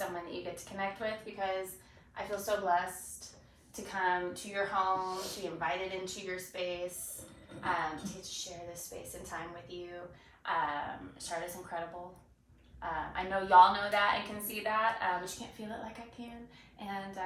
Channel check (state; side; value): identical; both; correlation 1.00